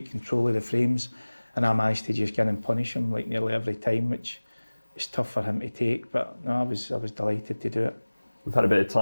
control of the frames, and I managed to just get in and punish him like nearly every time, which is tough for him to take. But no, I was delighted to do it. We've had a bit of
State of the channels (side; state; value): both; inverted; correlation -1.00